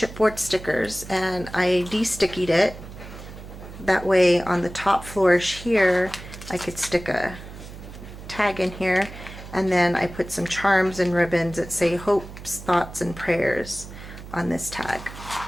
stickers and I de-stickied it. That way on the top flourish here I could stick a tag in here, And then I put some charms and ribbons that say hopes, thoughts, and prayers on this tag.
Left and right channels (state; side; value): noise; right; hum, 14 dB below the sound